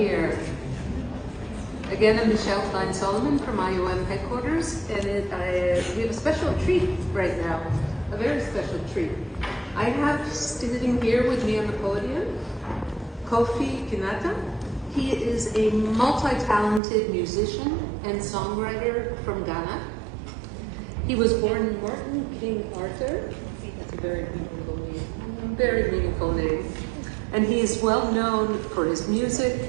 Again, I'm Michelle Klein-Solomon from IOM headquarters, and we have a special treat right now, a very special treat. I have sitting here with me on the podium, Kofi Kinaata. He is a multi-talented musician and songwriter from Ghana. He was born in Martin King Arthur. That's a very meaningful name. And he is well known for his music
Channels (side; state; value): left; drops out; at 16.8 s